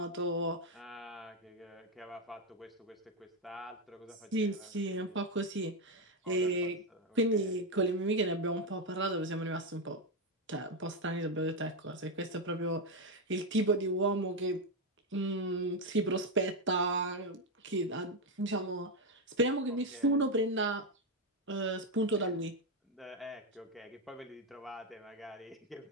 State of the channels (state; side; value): normal; both; correlation 0.05